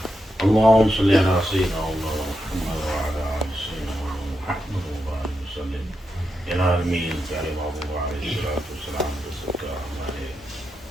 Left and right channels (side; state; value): both; normal; correlation 0.86